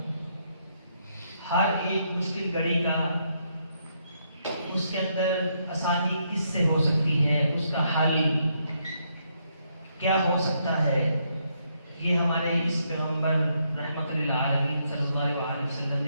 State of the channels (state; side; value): inverted; both; correlation -0.76